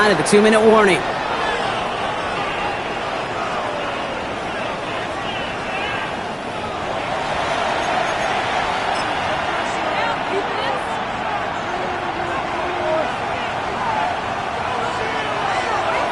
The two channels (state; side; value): identical; both; correlation 1.00